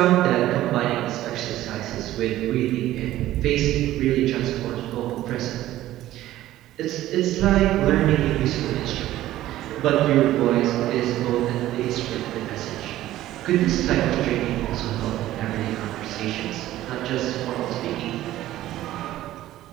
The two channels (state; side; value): quieter; left; 14.5 dB